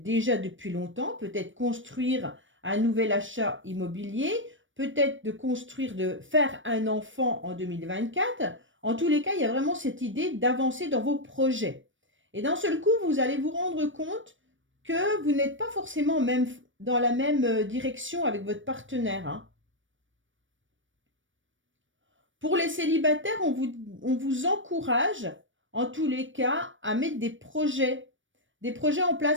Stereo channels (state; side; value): late; left; 0.56 ms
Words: déjà depuis longtemps, peut-être construire un nouvel achat immobilier, peut-être de faire un enfant en 2024. En tous les cas, il y a vraiment cette idée d'avancer dans vos projets. Et d'un seul coup, vous allez vous rendre compte que vous n'êtes pas forcément même dans la même direction avec votre partenaire, hein. Pour les célibataires, on vous encourage, en tous les cas, à mettre des projets en